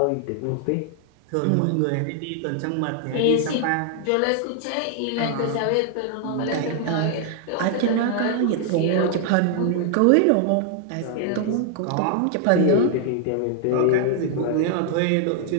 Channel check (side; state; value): both; different; correlation 0.00